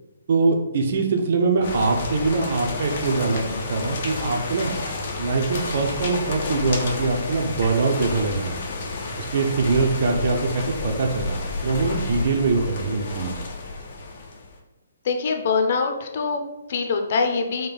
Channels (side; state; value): both; inverted; correlation -0.65